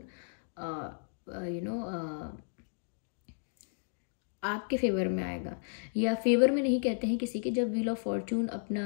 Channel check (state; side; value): silent; right; digital silence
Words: आपके फेवर में आएगा, या फेवर में नहीं कहते हैं किसी के, जब व्हील ऑफ फॉर्च्यून